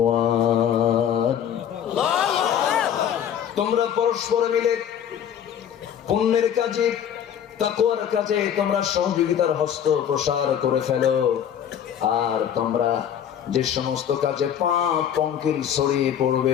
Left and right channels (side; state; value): right; quieter; 9.3 dB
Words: তোমরা পরস্পর মিলে পুণ্যের কাজে, তাকওয়ার কাজে তোমরা সহযোগিতার হস্ত প্রসার করে ফেলো। আর তোমরা যে সমস্ত কাজে পাপ পঙ্কিল ছড়িয়ে